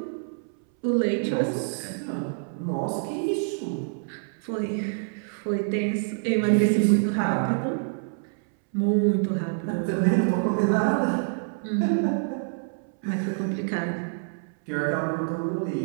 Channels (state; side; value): silent; left; 61 dB below the other